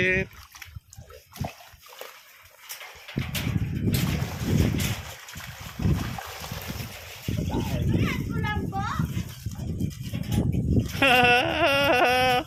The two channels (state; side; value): identical; both; correlation 1.00